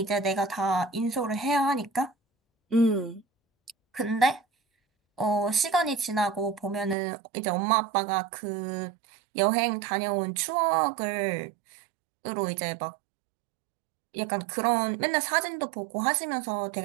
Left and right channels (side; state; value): left; drops out; at 7.0 s